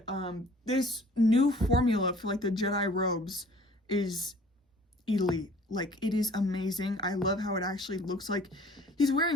this new formula for like the Jedi robes is elite. Like, it is amazing. I love how it actually looks like he's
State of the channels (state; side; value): normal; both; correlation 0.52